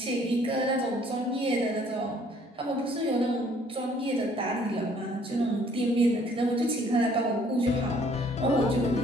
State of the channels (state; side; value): normal; both; correlation 0.60